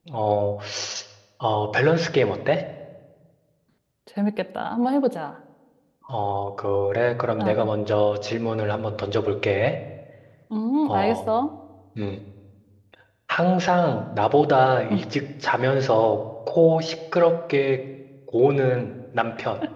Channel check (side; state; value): both; identical; correlation 1.00